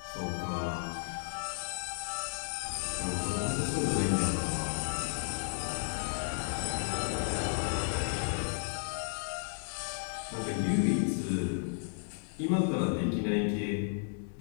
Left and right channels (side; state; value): right; silent; digital silence